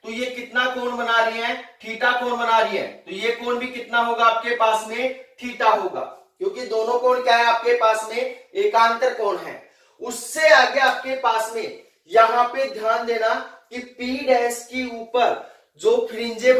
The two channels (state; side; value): identical; both; correlation 1.00